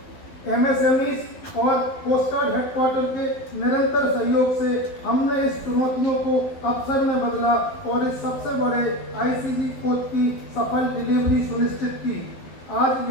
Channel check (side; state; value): right; late; 12 ms